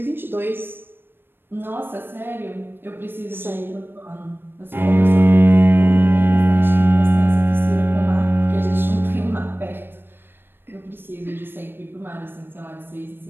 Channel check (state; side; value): late; left; 0.10 ms